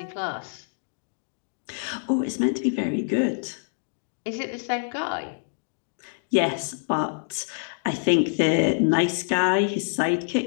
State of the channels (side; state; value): right; silent; digital silence